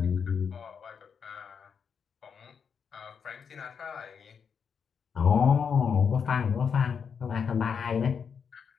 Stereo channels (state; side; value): quieter; right; 6.6 dB